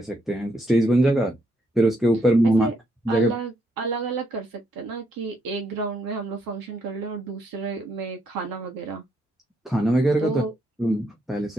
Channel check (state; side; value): normal; both; correlation 0.75